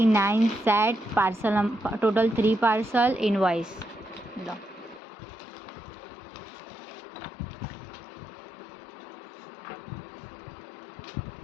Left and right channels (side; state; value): right; drops out; at 5.0 s